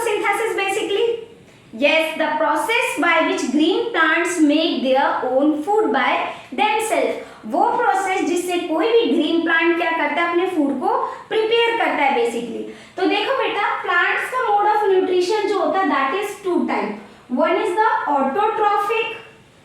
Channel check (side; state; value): both; identical; correlation 1.00